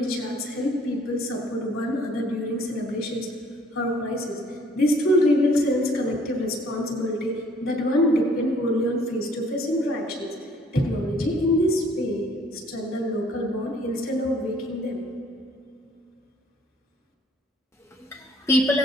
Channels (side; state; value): both; normal; correlation 0.59